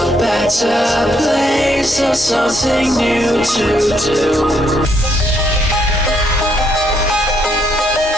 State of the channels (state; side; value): normal; both; correlation 0.73